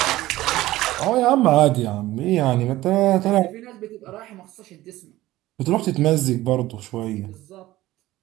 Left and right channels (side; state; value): left; quieter; 16.5 dB